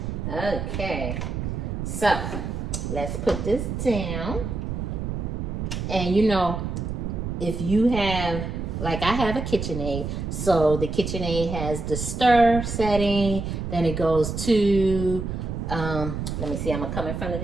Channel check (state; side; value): noise; right; rumble, 4 dB below the sound